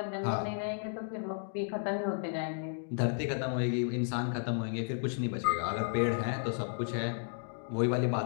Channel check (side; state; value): right; silent; digital silence